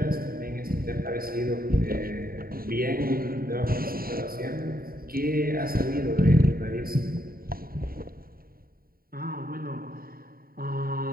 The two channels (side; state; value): left; late; 0.43 ms